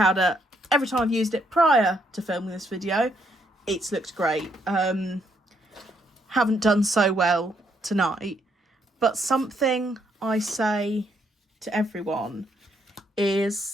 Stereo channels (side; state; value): both; normal; correlation 0.73